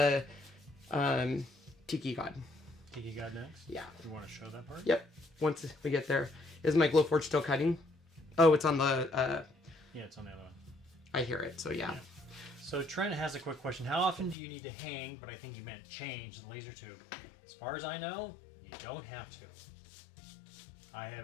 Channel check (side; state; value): right; drops out; at 14.4 s